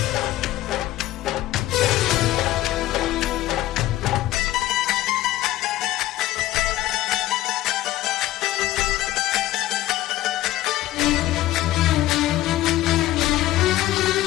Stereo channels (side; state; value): right; quieter; 15.3 dB